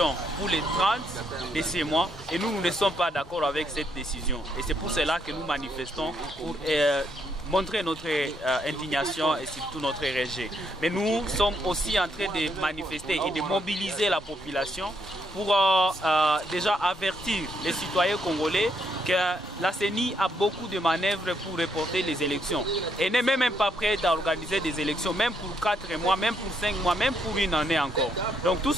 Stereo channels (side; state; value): both; normal; correlation 0.75